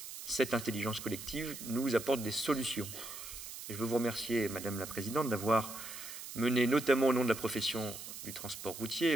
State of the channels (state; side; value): noise; right; hiss, 10 dB below the sound